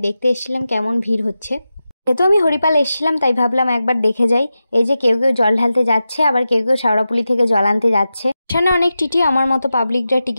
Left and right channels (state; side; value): inverted; both; correlation -0.92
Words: দেখতে এসেছিলাম কেমন ভিড় হচ্ছে। যেহেতু আমি হরিপাল এসেছিলাম তাই ভাবলাম একবার দেখে যাই। এই যে কেউ কেউ জল ঢালতে যাচ্ছে, আবার কেউ কেউ শাওড়াপুলি থেকে জল আনতে যাচ্ছে। স্টেশনে অনেক টিটি, আমার মতো পাবলিকরা